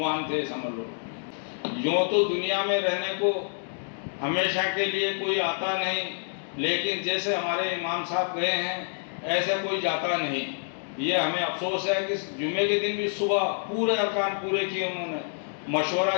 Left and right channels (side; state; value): right; silent; digital silence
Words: تھے، سمجھ لو۔ یوں تو دنیا میں رہنے کو ہمیشہ کے لیے کوئی آتا نہیں، لیکن جیسے ہمارے امام صاحب گئے ہیں ایسا کوئی جاتا نہیں۔ یہ ہمیں افسوس ہے کہ جمعے کے دن بھی صبح پورے ارکان پورے کیے، انہوں نے مشورہ